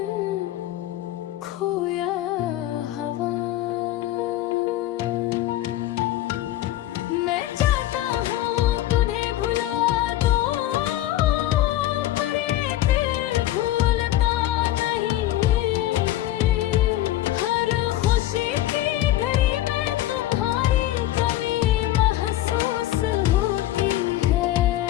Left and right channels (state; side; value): quieter; right; 14.4 dB